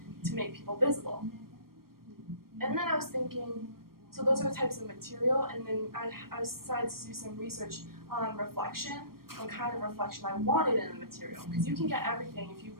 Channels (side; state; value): left; late; 0.93 ms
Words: to make people visible. And then I was thinking, so those are the types of material, and then I decided to do some research on reflection, on kind of reflection I wanted in the material. Because you can get everything if you